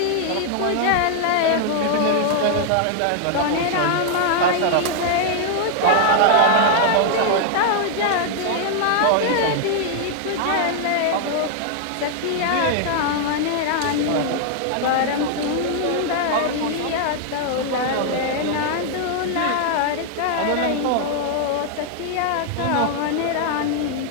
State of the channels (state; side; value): different; both; correlation 0.00